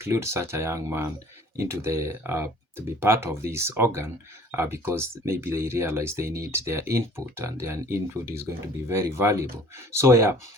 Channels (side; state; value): both; normal; correlation 0.50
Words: such a young man into the to be part of this organ because maybe they realize they need their input, and their input is going to be very valuable. So